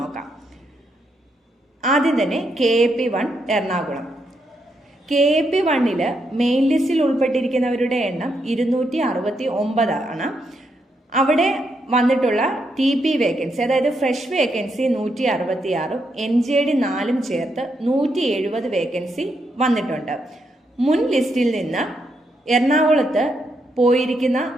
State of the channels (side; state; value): both; normal; correlation 0.80